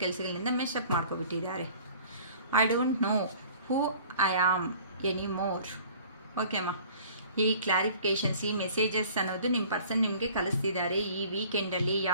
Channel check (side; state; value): both; inverted; correlation -0.49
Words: ಕೆಲಸಗಳಿಂದ ಮೆಸ್ಅಪ್ ಮಾಡ್ಕೊಬಿಟ್ಟಿದ್ದಾರೆ. I don't know who I am anymore. Okay ಅಮ್ಮ, ಈ clarifications, ಈ messages ಅನ್ನೋದು ನಿಮ್ಮ ಪರ್ಸನ್ ನಿಮಗೆ ಕಲಿಸ್ತಿದ್ದಾರೆ. ಈ ವೀಕೆಂಡಲ್ಲಿ